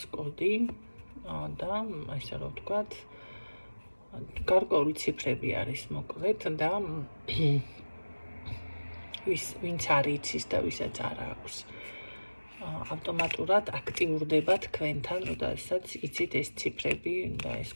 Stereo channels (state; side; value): inverted; both; correlation -1.00